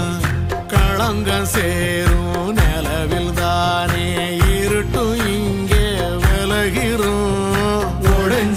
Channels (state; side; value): identical; both; correlation 1.00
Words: களங்கம் சேரும் நிலவில் தானே இருட்டும் இங்கே விலகிறோம்